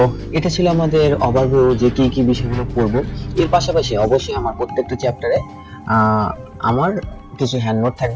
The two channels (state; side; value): identical; both; correlation 1.00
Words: এটা ছিল আমাদের ওভারভিউ যে কি কি বিষয়গুলো পড়ব। এর পাশাপাশি অবশ্যই আমার প্রত্যেকটা চ্যাপ্টারে আমার কিছু হ্যান্ড নোট